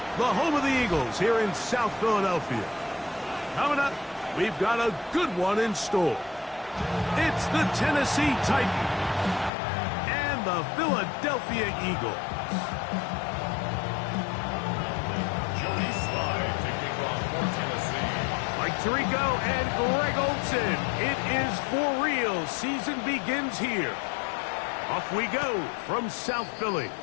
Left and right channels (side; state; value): right; drops out; at 9.5 s